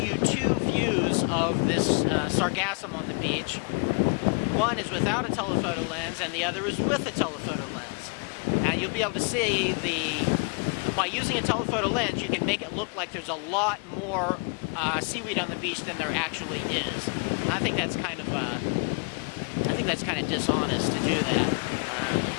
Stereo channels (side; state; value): right; quieter; 37.2 dB